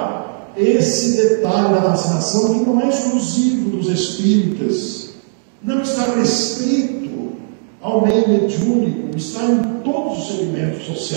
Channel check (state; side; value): silent; left; digital silence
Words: esse detalhe da fascinação, que não é exclusivo dos espíritas, não está restrito ao meio mediúnico, está em todos os segmentos